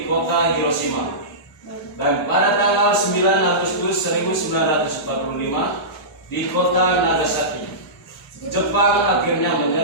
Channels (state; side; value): normal; both; correlation -0.19